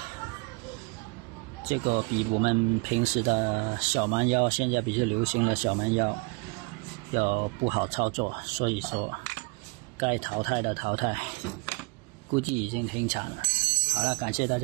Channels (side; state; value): left; quieter; 30.8 dB